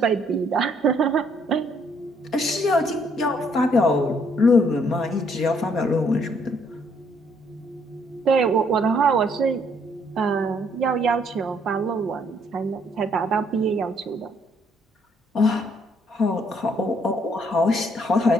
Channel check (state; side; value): normal; both; correlation 0.68